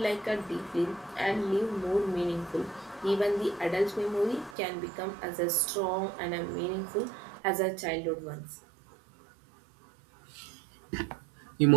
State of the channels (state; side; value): drops out; left; at 4.5 s